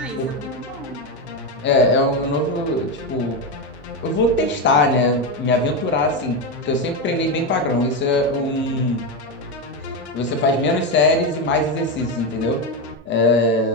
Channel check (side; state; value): both; normal; correlation 0.11